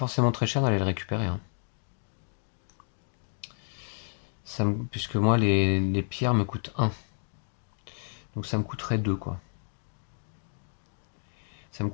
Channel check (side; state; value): right; silent; digital silence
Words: très cher d'aller le récupérer, hein. Puisque moi, les pierres me coûtent 1. Donc ça me coûterait 2, quoi. Ça me